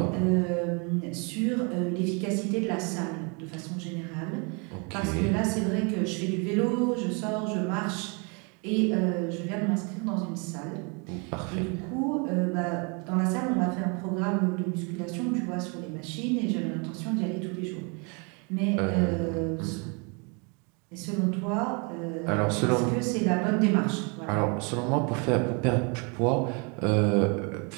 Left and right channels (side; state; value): left; quieter; 33.4 dB